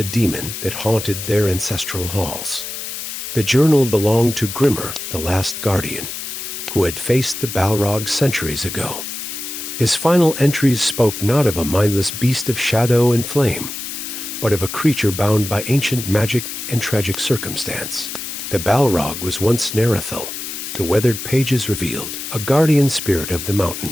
demon that haunted their ancestral halls. The journal belonged to Grimmer, the last guardian, who had faced the Balrogs centuries ago. His final entries spoke not of a mindless beast of shadow and flame, but of a creature bound by ancient magic and tragic circumstance. The Balrog was once Narethil, the weathered pages revealed, a guardian spirit of the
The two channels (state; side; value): noise; left; hiss, 7 dB below the sound